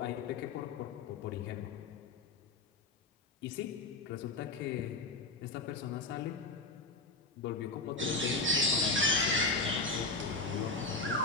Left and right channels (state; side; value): quieter; right; 3.4 dB